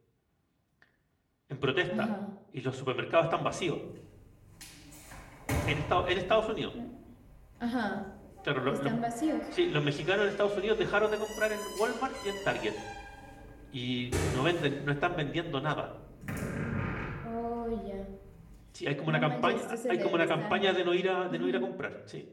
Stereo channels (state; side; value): identical; both; correlation 1.00